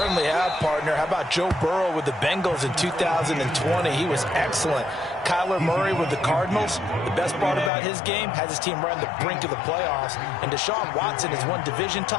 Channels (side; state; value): right; drops out; at 7.7 s